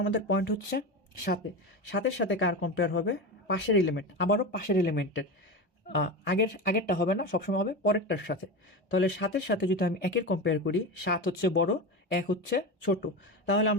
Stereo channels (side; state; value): both; normal; correlation 0.22